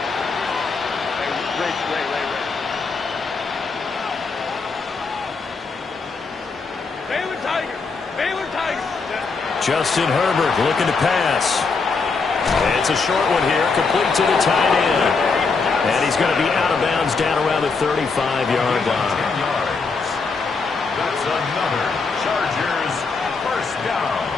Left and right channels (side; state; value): right; quieter; 4.5 dB